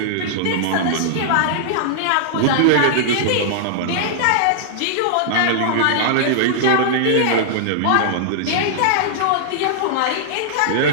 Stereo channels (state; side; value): different; both; correlation -0.01